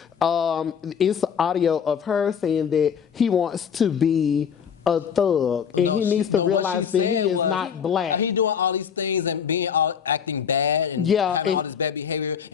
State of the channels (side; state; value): right; quieter; 7.4 dB